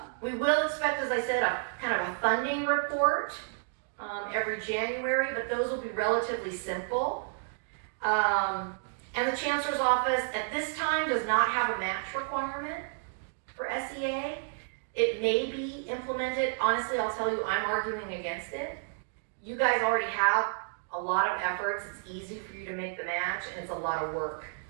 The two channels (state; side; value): silent; left; digital silence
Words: We will expect, as I said, a kind of a funding report every January, but those will be relatively simple. And the Chancellor's Office at this time does not have a match requirement for SEA. It may be implemented. Honestly, I'll tell you, I'm arguing against it. You guys already have a lot of efforts. It's easy for you to make the match, and it's a lot of work